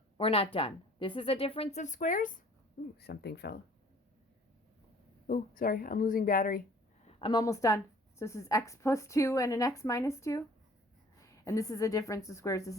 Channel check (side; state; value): both; normal; correlation 0.53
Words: we're not done. This is a difference of squares. Ooh, something fell. Oh, sorry, I'm losing battery. I'm almost done. So this is x plus 2 and an x minus 2. And this is a difference of squares. This